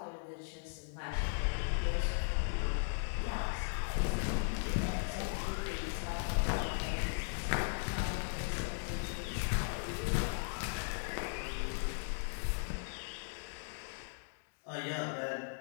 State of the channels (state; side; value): silent; right; digital silence